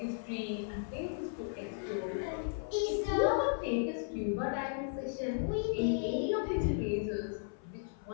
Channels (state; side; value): silent; right; 54 dB below the other